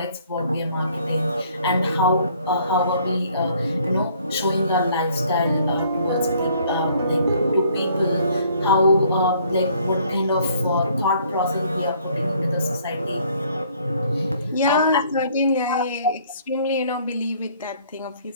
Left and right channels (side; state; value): both; inverted; correlation -0.61